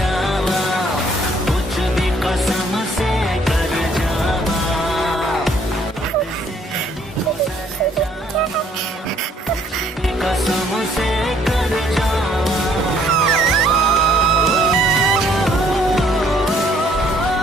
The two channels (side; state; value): both; normal; correlation 0.63